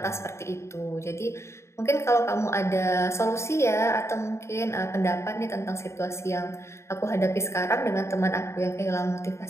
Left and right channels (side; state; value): right; late; 0.13 ms